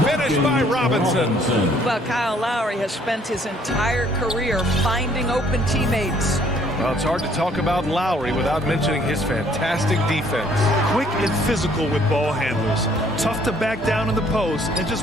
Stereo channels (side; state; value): both; normal; correlation 0.62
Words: finish by Robinson. Well, Kyle Lowry has spent his entire career finding open teammates. Well, it's hard to talk about Lowry without mentioning his fantastic defense. Quick and physical with ball handlers. Tough to back down in the post and